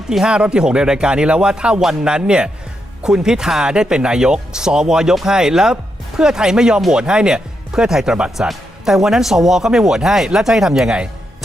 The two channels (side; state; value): both; normal; correlation 0.83